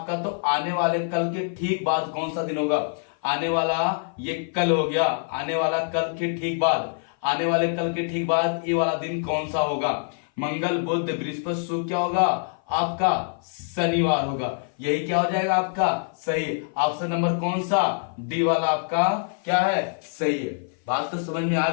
तो आने वाले कल के ठीक बाद कौन सा दिन होगा। आने वाला ये कल हो गया, आने वाला कल के ठीक बाद, आने वाले कल के ठीक बाद ये वाला दिन कौन सा होगा। मंगल बुध बृहस्पति शुक्र क्या होगा आपका शनिवार होगा। यही क्या हो जाएगा आपका सही। ऑप्शन नंबर कौन सा, डी वाला आपका क्या है सही है। बात तो समझ में आ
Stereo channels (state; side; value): silent; right; 55 dB below the other